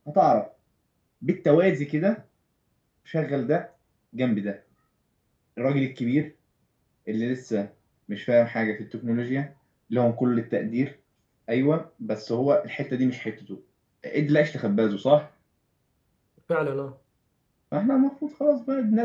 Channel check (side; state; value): both; identical; correlation 1.00